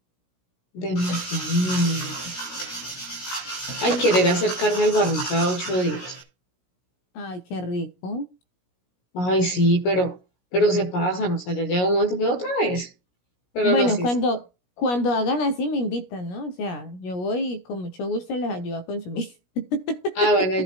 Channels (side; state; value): right; late; 17 ms